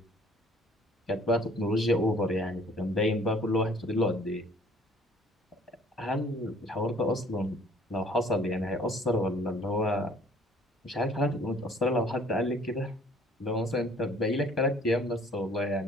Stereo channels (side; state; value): both; normal; correlation 0.57